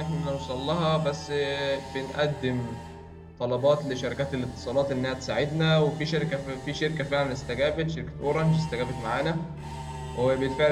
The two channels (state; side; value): identical; both; correlation 1.00